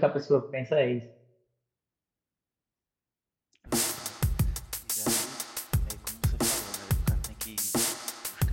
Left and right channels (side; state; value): both; identical; correlation 1.00